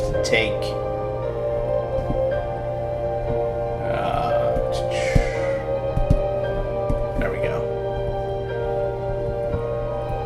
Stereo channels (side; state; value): both; identical; correlation 1.00